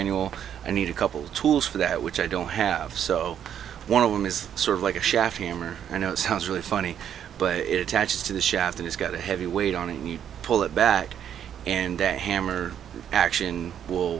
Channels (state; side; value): quieter; left; 9.3 dB